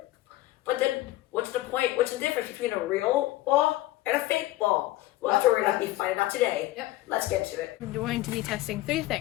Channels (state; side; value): quieter; right; 17.0 dB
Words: But then, what's the point? What's the difference between a real ball and a fake ball? Well, that's what we're going to be finding out today. Yep. Let's get to it. We're going to be testing 3